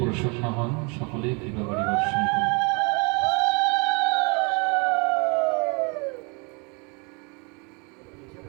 হন, সকলেই কৃপা বাড়ি বর্ষণ করুন।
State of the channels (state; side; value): quieter; left; 32.0 dB